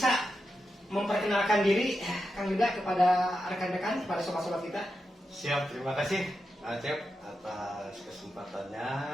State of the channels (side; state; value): both; normal; correlation 0.88